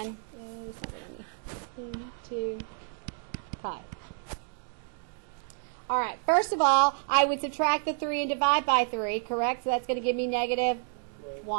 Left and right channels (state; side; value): silent; left; digital silence